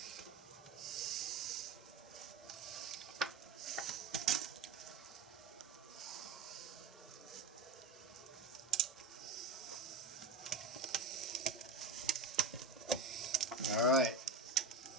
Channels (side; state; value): left; quieter; 3.3 dB